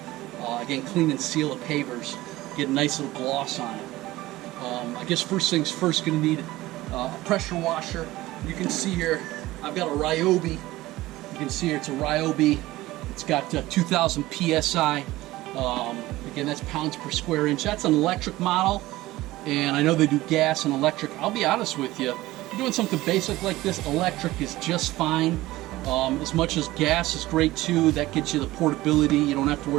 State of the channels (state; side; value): quieter; left; 17.7 dB